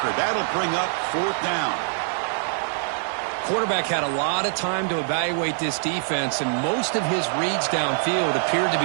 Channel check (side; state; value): left; silent; digital silence